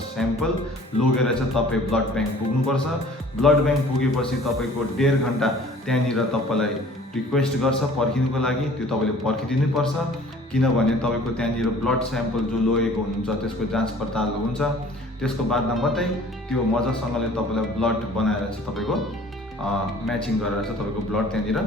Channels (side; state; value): both; normal; correlation 0.50